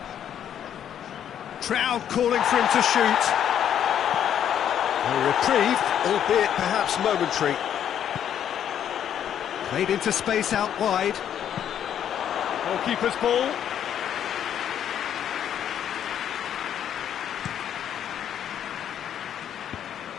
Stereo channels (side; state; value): right; quieter; 9.7 dB